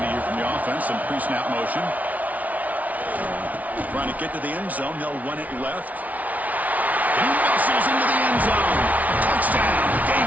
here from the offense. Some pre-snap motion. Trying to get to the end zone. They'll run it left. He muscles into the end zone. Touchdown,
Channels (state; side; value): late; left; 0.072 ms